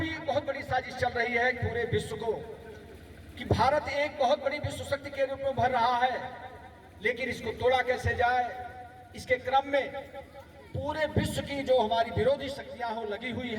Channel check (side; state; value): both; identical; correlation 1.00